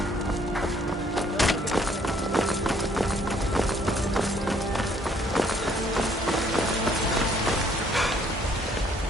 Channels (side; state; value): both; normal; correlation 0.63